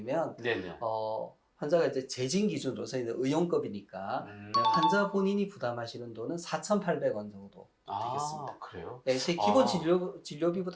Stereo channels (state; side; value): identical; both; correlation 1.00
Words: 네네. 환자가 이제 재진 기준으로서 이제 의용급이니까 환자 본인이 부담하시는 돈은 4,800원 정도 되겠습니다. 그래요? 제 기본